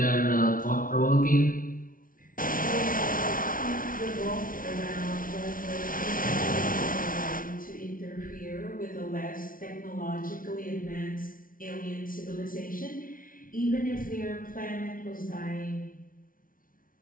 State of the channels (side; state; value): right; late; 0.40 ms